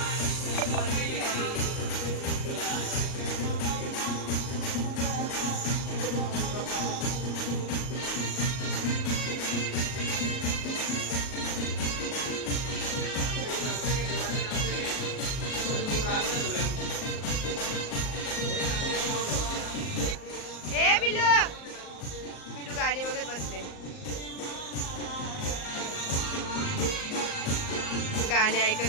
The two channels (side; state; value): right; late; 38 ms